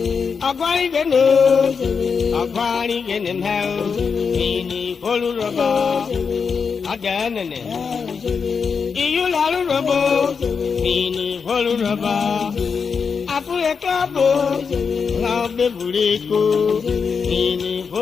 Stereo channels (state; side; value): quieter; right; 5.7 dB